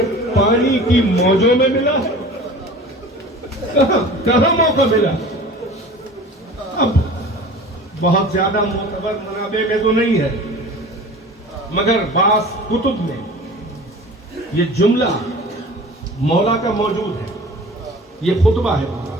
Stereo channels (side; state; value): both; normal; correlation 0.40